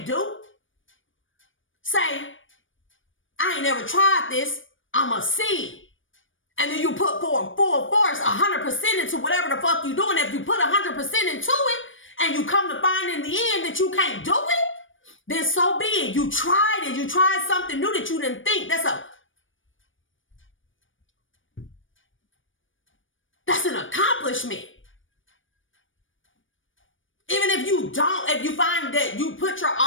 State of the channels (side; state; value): right; late; 0.57 ms